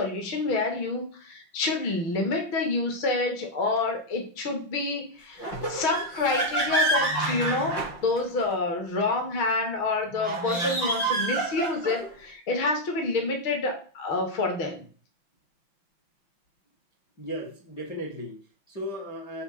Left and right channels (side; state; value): right; late; 5.7 ms